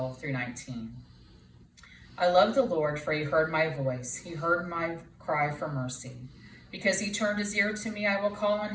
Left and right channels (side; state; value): both; identical; correlation 1.00